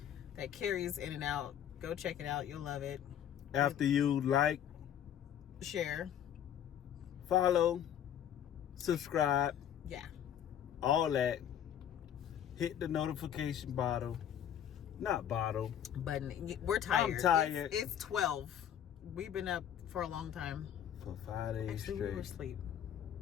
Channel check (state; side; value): quieter; right; 9.8 dB